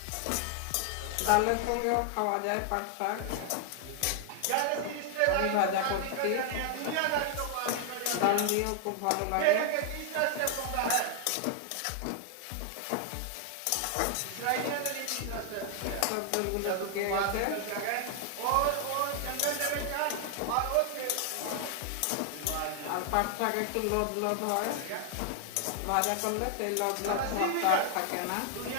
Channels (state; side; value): different; both; correlation 0.00